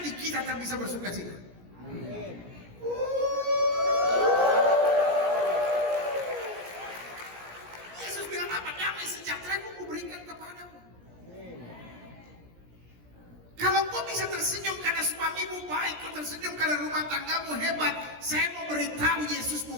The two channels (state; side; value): late; left; 17 ms